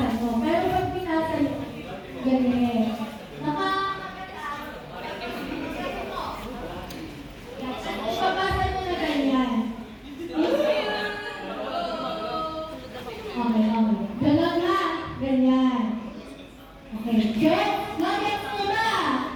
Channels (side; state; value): both; identical; correlation 1.00